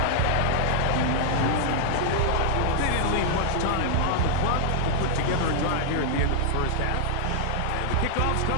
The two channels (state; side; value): different; both; correlation -0.01